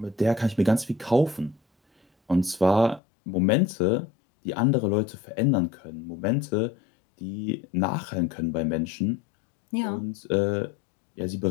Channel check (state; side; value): drops out; right; at 3.0 s